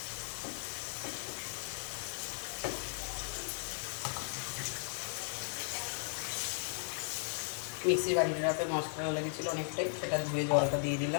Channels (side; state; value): right; silent; digital silence